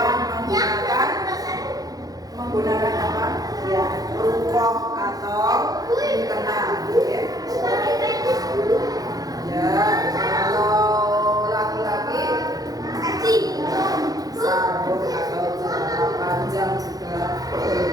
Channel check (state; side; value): late; left; 0.18 ms